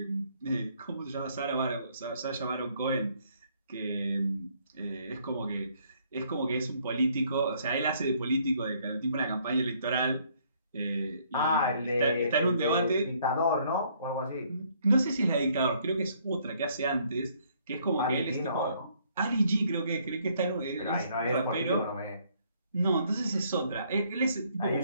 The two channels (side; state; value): both; inverted; correlation -0.66